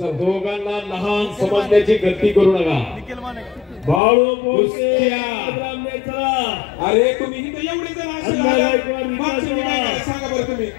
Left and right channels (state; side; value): drops out; right; at 4.0 s